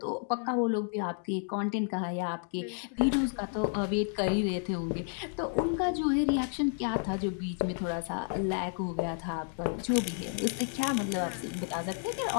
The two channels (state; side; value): silent; right; 57 dB below the other